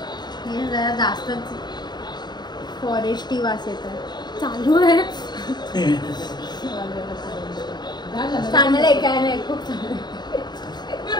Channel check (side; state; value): right; late; 0.21 ms